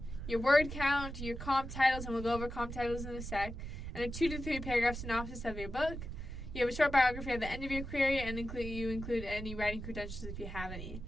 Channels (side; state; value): right; noise; rumble, 8 dB below the sound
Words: your word count, your comp titles, and we'll go over comp titles in a sec, and a 2 to 3 paragraph synopsis of your book. You have a short biography at the end of your query, and you include any writing credentials if you have any.